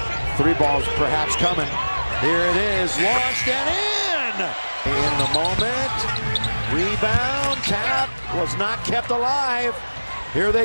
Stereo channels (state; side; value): inverted; both; correlation -1.00